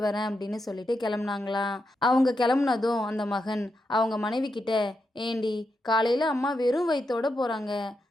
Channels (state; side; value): normal; both; correlation 0.85